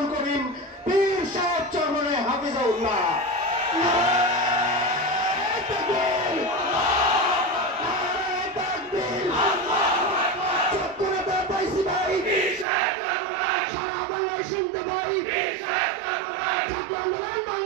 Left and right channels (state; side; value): drops out; left; at 12.7 s